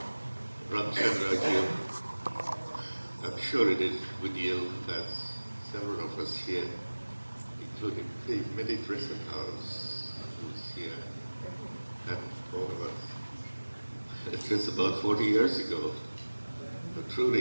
Ramachandra, I'm sure it is with you, as several of us here, including the Midi Dressing House, who's here, and all of us. It's just about 40 years ago. But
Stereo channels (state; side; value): inverted; both; correlation -1.00